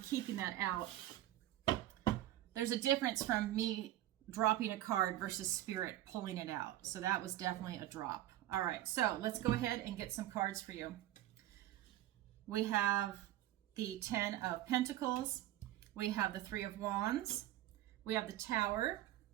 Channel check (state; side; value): quieter; left; 14.1 dB